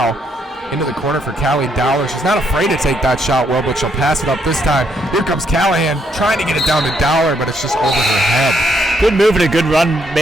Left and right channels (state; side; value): normal; both; correlation 0.73